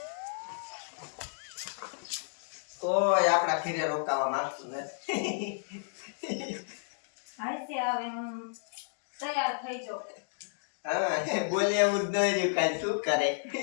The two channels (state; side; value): silent; right; digital silence